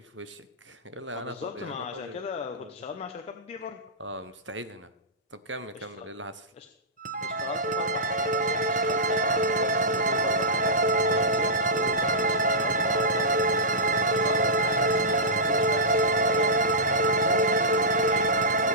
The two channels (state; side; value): normal; both; correlation -0.16